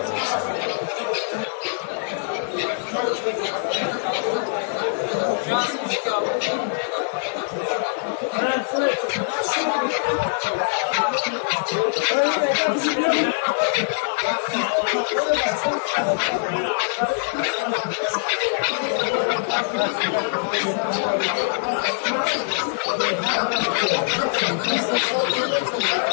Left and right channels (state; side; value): silent; right; digital silence